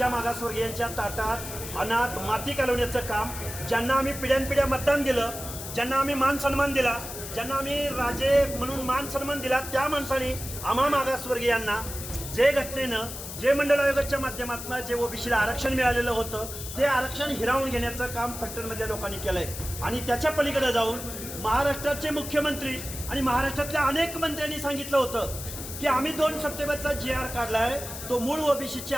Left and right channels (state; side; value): noise; left; hiss, 9 dB below the sound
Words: मागासवर्गीयांच्या ताटात अनाथ माती घालवण्याचं काम, ज्यांना आम्ही पिढ्यानपिढ्या मतदान दिलं, ज्यांना आम्ही मान सन्मान दिला, ज्यांना आम्ही राजे म्हणून मान सन्मान दिला, त्या माणसाने आम्हा मागासवर्गीयांना जे घटनेनं, जे मंडळ आयोगाच्या माध्यमातून जे ओबीसीला आरक्षण मिळालेलं होतं ते आरक्षण हिरावून घेण्याचं काम फलटणमधल्या लोकांनी केलं आहे. आणि त्याच्या पलीकडे जाऊन महाराष्ट्राचे मुख्यमंत्री आणि महाराष्ट्रातल्या अनेक मंत्र्यांनी सांगितलं होतं की आम्ही 2 सप्टेंबरचा GR काढला आहे, तो मूळ